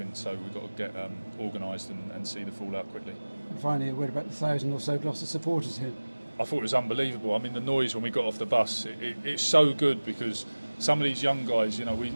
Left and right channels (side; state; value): both; inverted; correlation -1.00